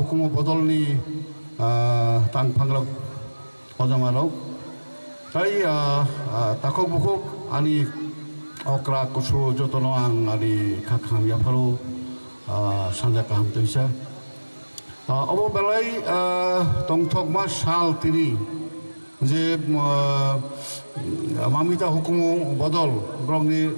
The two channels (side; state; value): both; inverted; correlation -1.00